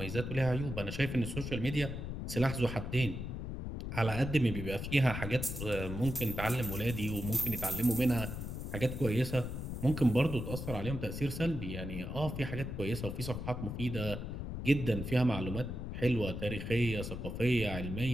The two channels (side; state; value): left; noise; rumble, 6 dB below the sound